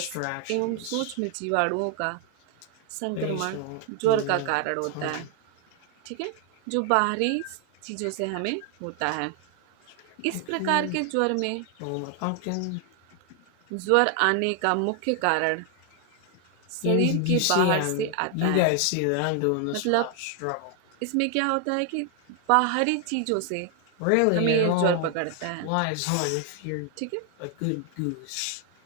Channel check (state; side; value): different; both; correlation 0.00